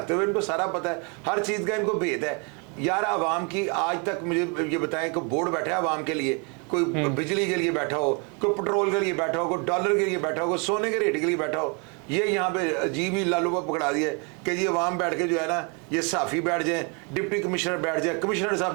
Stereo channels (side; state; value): left; quieter; 34.2 dB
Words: हुए इनको सारा पता है, हर चीज का इनको भेद है। यार आवाम की आज तक मुझे ये बताएं कि बोर्ड बैठा है आवाम के लिए, कोई बिजली के लिए बैठा हो, कोई पेट्रोल के लिए बैठा हो, कोई डॉलर के लिए बैठा हो, कोई सोने के रेट के लिए बैठा हो। ये यहाँ पे अजीब ही लालूबा पकड़ा दिया कि जी आवाम बैठ के जो है ना, ये साफी बैठ जाएं, डिप्टी कमिश्नर बैठ जाए, कमिश्नर साहब